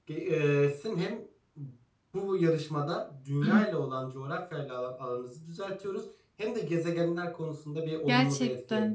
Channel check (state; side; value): identical; both; correlation 1.00